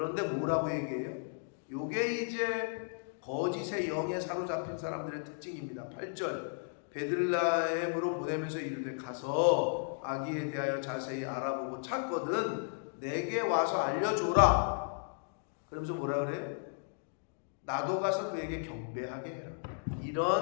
뭐라고 얘기해요? 요게 이제 거짓의 영에 사로잡힌 사람들의 특징입니다. 8절 베들레헴으로 보내면서 이르되 가서 아기에 대하여 자세히 알아보고 찾거든 내게 와서 알려줘라. 그러면서 뭐라 그래? 나도 가서 그에게 경배하게 해라.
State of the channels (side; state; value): right; silent; digital silence